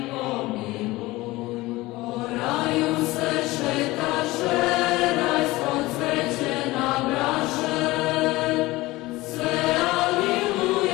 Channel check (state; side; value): quieter; right; 19.8 dB